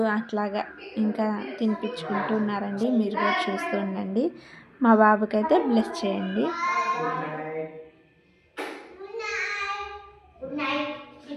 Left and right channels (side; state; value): both; identical; correlation 1.00